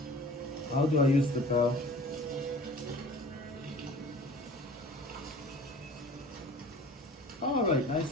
How do I use the bell? Alright,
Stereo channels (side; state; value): both; normal; correlation 0.45